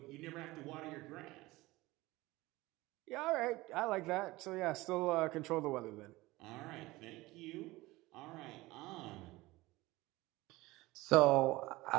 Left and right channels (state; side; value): quieter; left; 19.9 dB